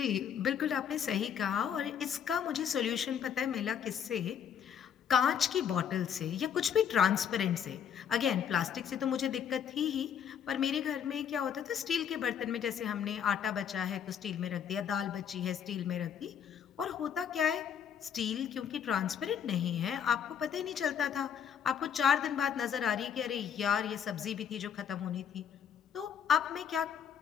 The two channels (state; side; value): quieter; right; 8.2 dB